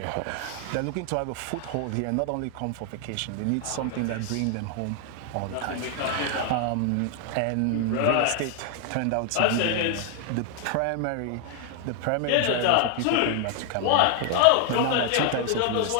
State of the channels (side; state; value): both; different; correlation 0.00